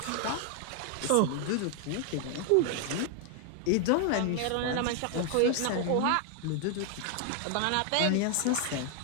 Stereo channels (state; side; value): different; both; correlation 0.00